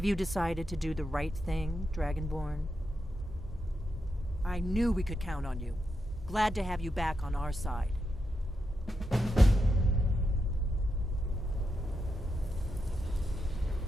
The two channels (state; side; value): normal; both; correlation 0.85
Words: you decided to do the right thing, Dragonborn? I knew we could count on you. Glad to have you back on our side.